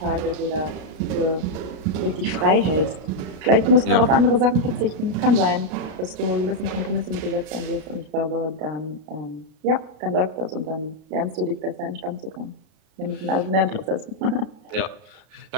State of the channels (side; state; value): left; late; 33 ms